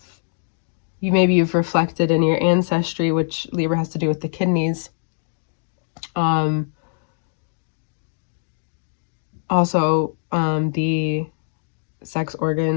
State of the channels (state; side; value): silent; right; digital silence